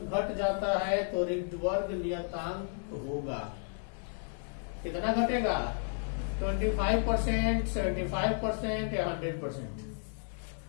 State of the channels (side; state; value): right; silent; 56 dB below the other